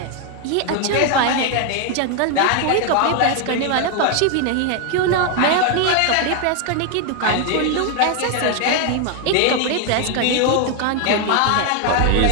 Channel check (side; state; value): both; different; correlation 0.01